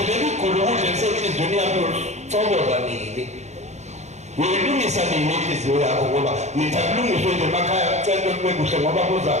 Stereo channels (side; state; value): left; late; 0.33 ms